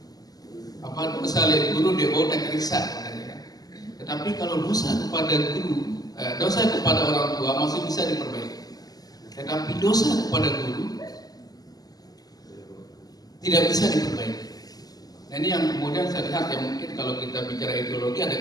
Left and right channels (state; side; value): late; right; 0.18 ms